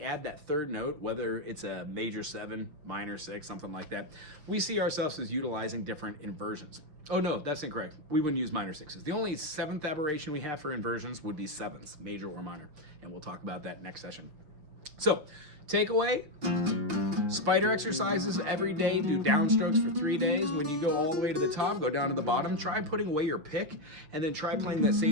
that third note, whether it's a major 7, minor 6, something like that, we see ourselves as utilizing different inversions. Oh no, that's incorrect. We wouldn't use minor 6s. The only 7th aberration we have for inversions would be 7ths, major or minor. And we'll talk about that next session. So, takeaway, spider exercises every day, do downstrokes for 3 days. When you go all the way to the top, go down to the bottom, try putting away your pick, and then try playing that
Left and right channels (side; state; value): left; late; 6.6 ms